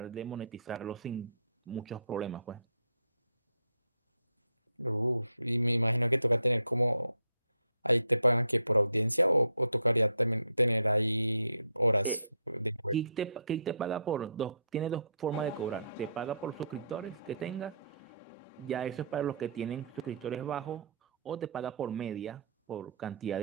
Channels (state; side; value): inverted; both; correlation -0.69